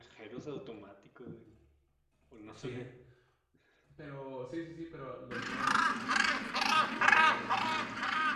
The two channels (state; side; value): identical; both; correlation 1.00